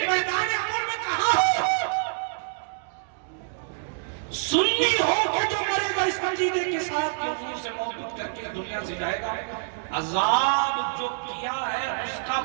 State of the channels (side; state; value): left; silent; digital silence